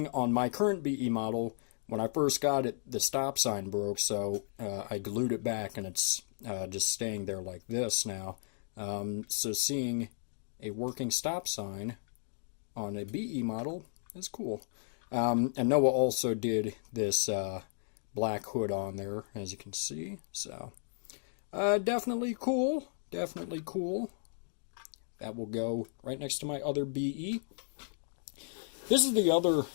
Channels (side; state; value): right; silent; digital silence